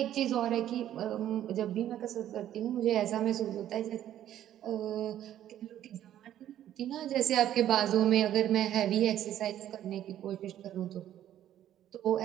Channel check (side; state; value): left; quieter; 11.7 dB